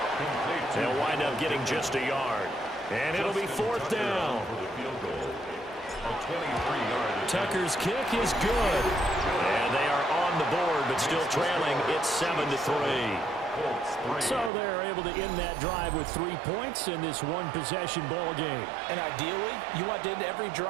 They'll wind up getting just a yard. And it'll be 4th down. Tucker's kick is good. And they are on the board, but still trailing. It's 7-3. So they're able to end that drive with 3 points in this one-possession ball game. And ideally, you want to end every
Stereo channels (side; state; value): left; drops out; at 14.5 s